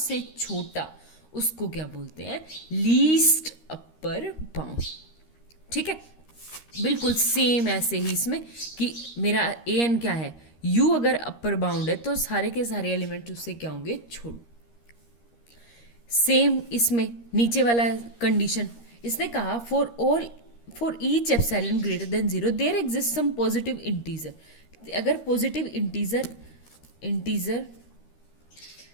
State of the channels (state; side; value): late; right; 13 ms